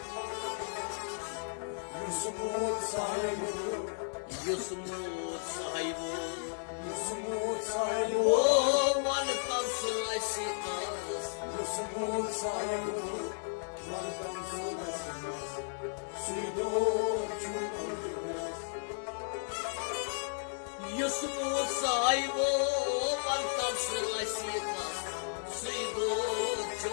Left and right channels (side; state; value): right; silent; digital silence